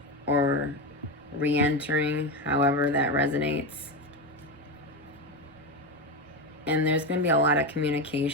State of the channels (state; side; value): normal; both; correlation 0.15